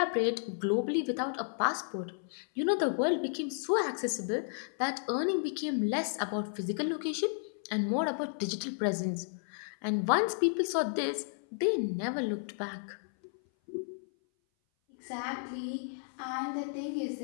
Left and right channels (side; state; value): right; silent; 56 dB below the other